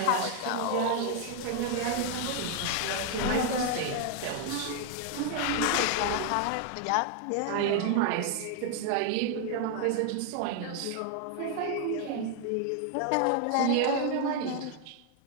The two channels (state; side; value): different; both; correlation 0.00